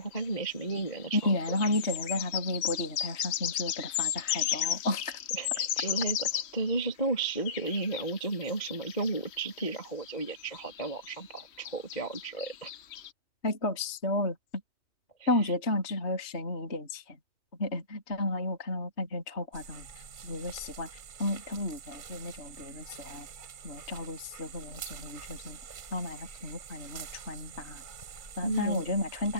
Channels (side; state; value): right; late; 3.1 ms